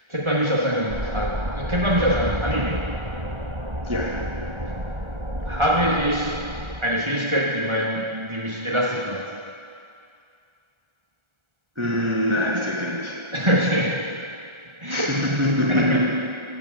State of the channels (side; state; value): left; late; 1.3 ms